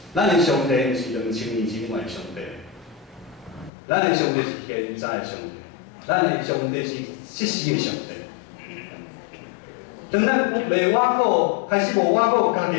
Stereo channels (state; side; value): drops out; right; at 3.7 s